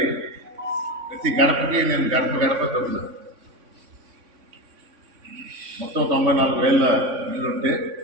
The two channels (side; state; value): left; late; 3.6 ms